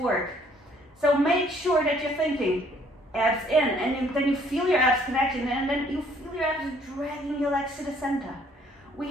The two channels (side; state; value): both; normal; correlation 0.62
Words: So make sure that you're thinking abs in, and then you feel your abs connecting, and then you feel your abs dragging your legs to the center. We